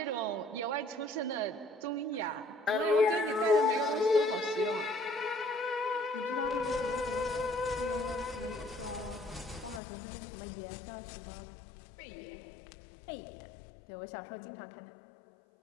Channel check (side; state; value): right; drops out; at 9.8 s